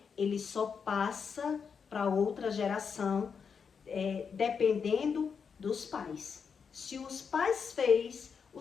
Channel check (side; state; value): right; quieter; 6.2 dB